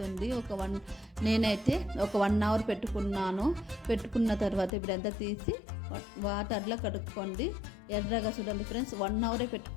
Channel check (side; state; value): right; drops out; at 4.7 s